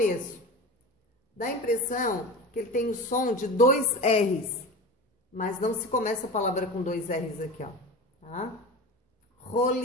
Dá a impressão que ele tem o som de dois R's, mas não se começa a palavra com dois R's aqui, ó, tá?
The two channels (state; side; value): normal; both; correlation 0.30